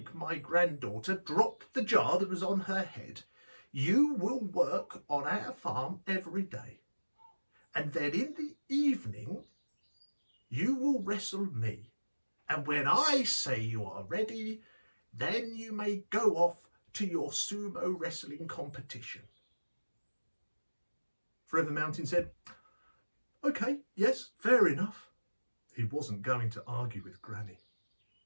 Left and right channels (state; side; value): inverted; both; correlation -1.00